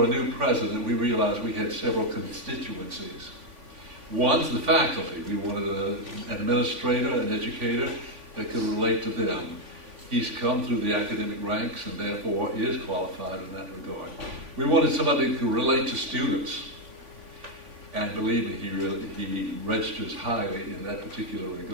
a new president, we realized we had several constituencies. One's the faculty. We wanted an administrator, an educator that could relate to them. He's come through the academic ranks and therefore is qualified in that regard. We wanted somebody who could relate to students. And believe me, he registers highly in that particular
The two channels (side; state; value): left; late; 3.5 ms